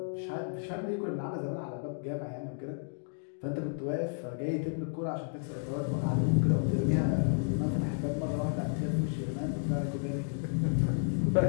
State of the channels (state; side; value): silent; right; digital silence